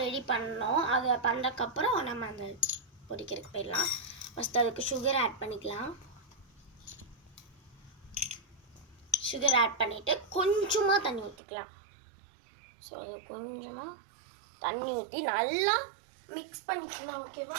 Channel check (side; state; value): left; drops out; at 11.4 s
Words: ரெடி பண்ணோம். அதை பண்ணுறதுக்கப்புறம் நம்ம அந்த பொரிக்கிறதுக்கு போயிடலாம். ஃபஸ்ட்டு அதுக்கு சுகர் ஆட் பண்ணிக்கலாம். சுகர் ஆட் பண்ணிவிட்டு கொஞ்சமாக தண்ணி ஊற்றிக்கலாம். ஸோ அது கொஞ்சமாக தண்ணி ஊற்றி நல்லா மிக்ஸ் பண்ணிக்கலாம்.